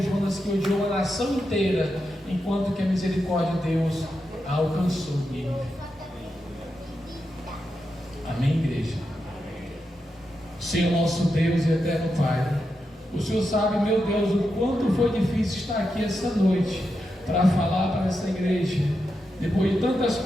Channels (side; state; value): both; normal; correlation 0.87